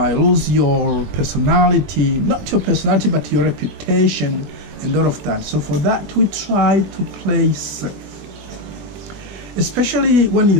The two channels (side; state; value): left; late; 20 ms